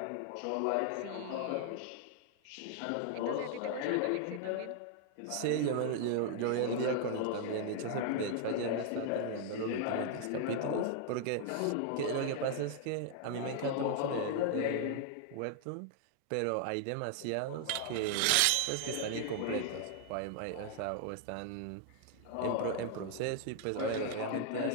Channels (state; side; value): different; both; correlation 0.00